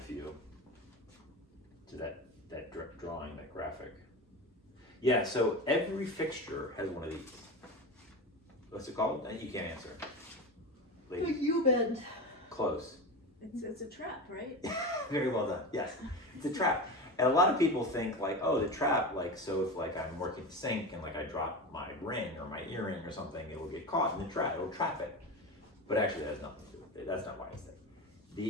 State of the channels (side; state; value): both; normal; correlation 0.24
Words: to that drawing, that graphic. Yeah, so every fixture has one of these. What's it called? You can't answer. Ladies, You bend. close. It's a trap, right? Very well done. Yes, it's a trap. And a lot of people think like, oh, the trap, like, so if like I'm working the sink and like I drop my ring or my earring or something, it will get caught in the trap. It'll trap it. But actually, that has nothing to do with it. That's not why it's there.